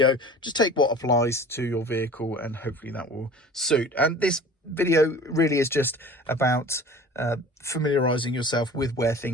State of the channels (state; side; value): normal; both; correlation 0.43